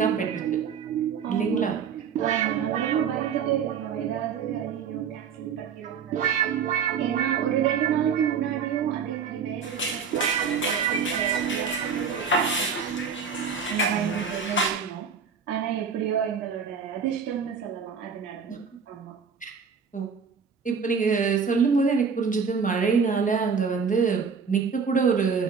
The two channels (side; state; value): left; quieter; 6.3 dB